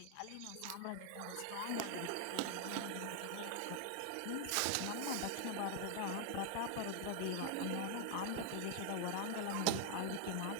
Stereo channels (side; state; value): both; different; correlation 0.00